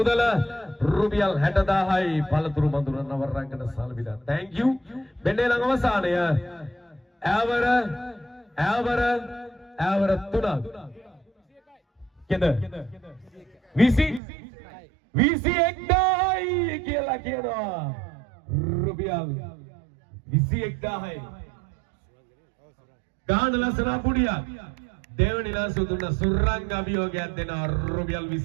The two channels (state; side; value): drops out; left; at 14.2 s